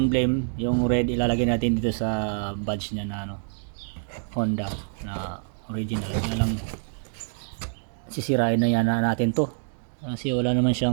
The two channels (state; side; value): silent; left; digital silence